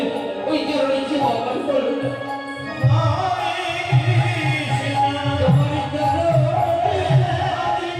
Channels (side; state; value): both; identical; correlation 1.00